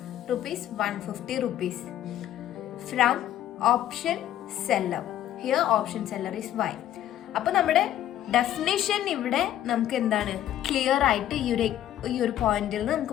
₹150 from option seller. Here option seller is Y. അപ്പൊ നമ്മുടെ definition ഇവിടെ നമുക്ക് എന്താണ് ക്ലിയർ ആയിട്ട് ഈ ഒരു പോയിന്റിൽ നിന്ന്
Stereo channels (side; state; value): right; quieter; 12.1 dB